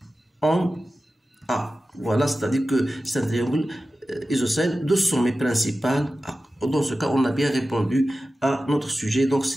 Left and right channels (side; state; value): both; normal; correlation 0.94